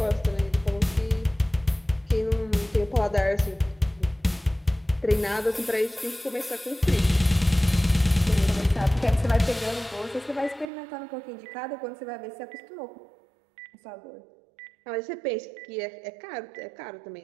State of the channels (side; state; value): left; drops out; at 10.7 s